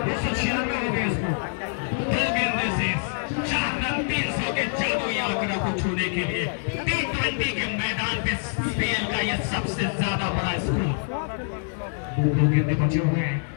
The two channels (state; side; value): silent; right; digital silence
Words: हो गए इसको। 2 गेंदें शेष, 4 रन 300 के जादुई आंकड़ा को छूने के लिए T20 के मैदान पे स्पेन का यह सबसे ज्यादा बड़ा स्कोर। 2 गेंदें बचे हुए हैं